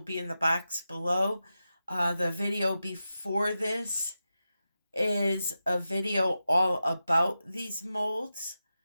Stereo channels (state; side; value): inverted; both; correlation -0.91